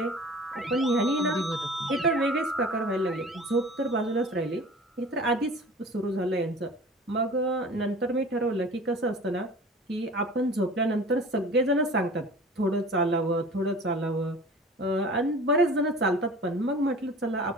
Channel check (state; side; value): normal; both; correlation 0.42